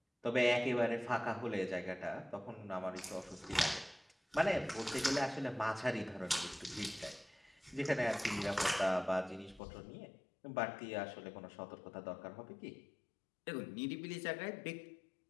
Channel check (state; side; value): drops out; right; at 9.6 s